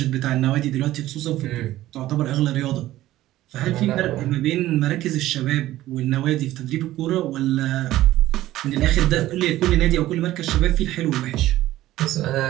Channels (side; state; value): left; quieter; 15.1 dB